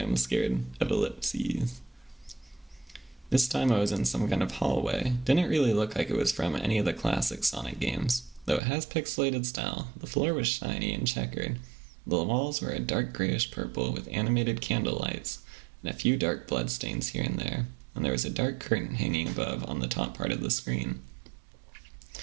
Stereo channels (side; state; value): left; drops out; at 8.6 s